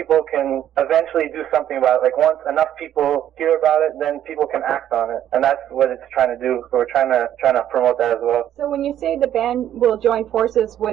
can eventually do something about it. Like once enough people hear about it, then people can act on it, and that's what it's trying to do. So we're trying to promote that as well. So when you say the band will join forces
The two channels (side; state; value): left; quieter; 11.1 dB